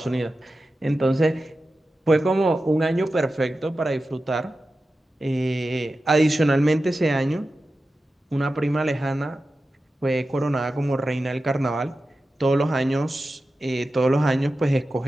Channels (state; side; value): normal; both; correlation 0.93